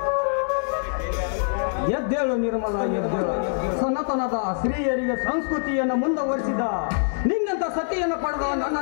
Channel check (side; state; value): right; silent; digital silence